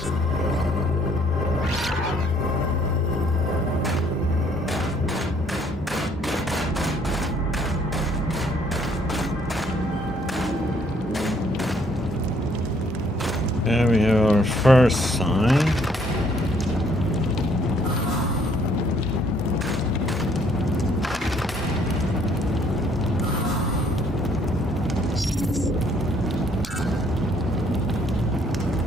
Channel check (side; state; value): both; normal; correlation 0.65